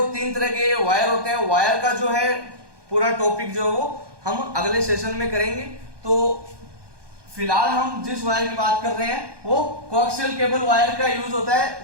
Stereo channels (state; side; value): late; left; 1.2 ms